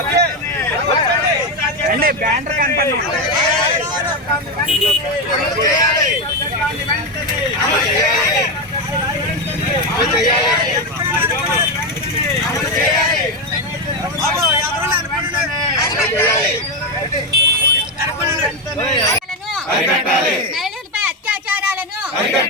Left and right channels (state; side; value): normal; both; correlation 0.10